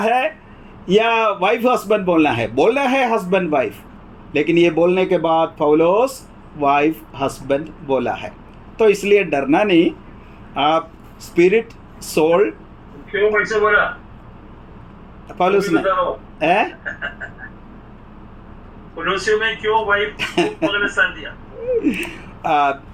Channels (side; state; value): both; identical; correlation 1.00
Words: या वाइफ हस्बैंड बोलना है? बोलना है हस्बैंड वाइफ, लेकिन ये बोलने के बाद पौलुस वाइफ हस्बैंड बोला है। तो इसलिए डरना नहीं। आप स्पिरिट सोल, क्यों वैसे बोला पौलुस ने कोलोसियों में क्यों वाइफ को स्थान दिया?